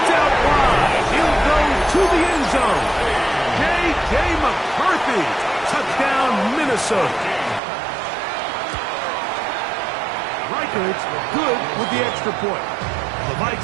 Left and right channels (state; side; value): drops out; left; at 7.6 s